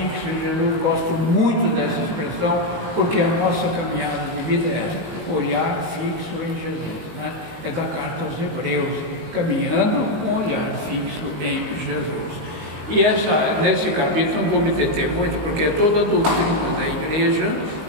em Jesus. Gosto muito dessa expressão, porque a nossa caminhada de vida é essa, olhar fixo em Jesus, né? É da carta aos Hebreus, caminhando com olhar fixo em Jesus. E nesse capítulo não vou me deter muito, porque é toda a doutrina da igreja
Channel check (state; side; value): late; left; 19 ms